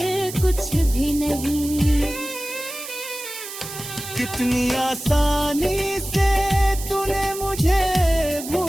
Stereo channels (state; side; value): noise; right; hiss, 10 dB below the sound